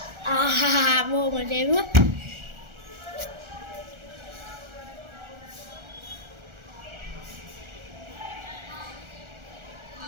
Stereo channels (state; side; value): late; left; 1.4 ms